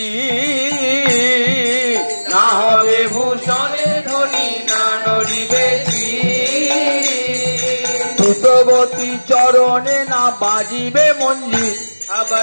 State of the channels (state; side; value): inverted; both; correlation -1.00